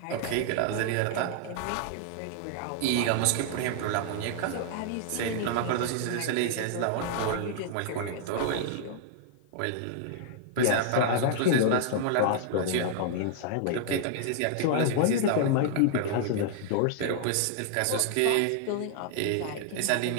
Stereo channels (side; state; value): both; different; correlation -0.01